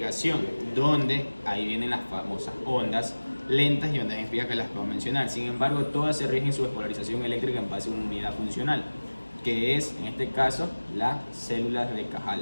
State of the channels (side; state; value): both; inverted; correlation -1.00